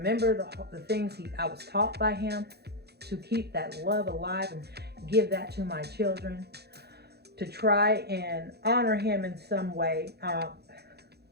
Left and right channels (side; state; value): left; late; 0.48 ms